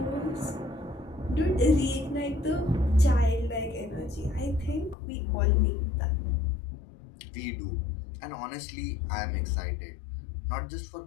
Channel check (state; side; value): drops out; right; at 5.0 s